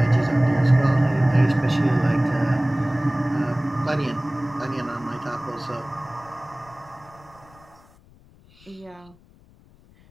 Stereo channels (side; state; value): left; noise; rumble, 27 dB below the sound